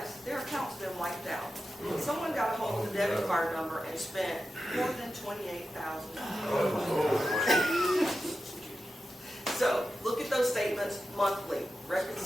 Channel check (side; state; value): both; normal; correlation 0.91